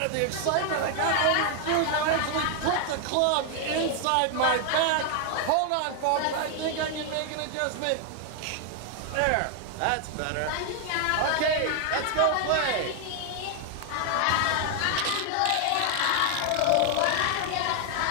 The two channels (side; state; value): both; different; correlation 0.00